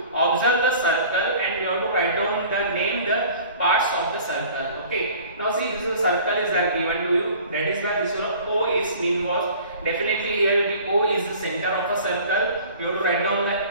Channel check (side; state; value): both; inverted; correlation -0.47